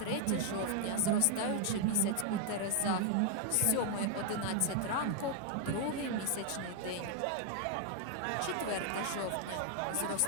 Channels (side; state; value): both; different; correlation 0.00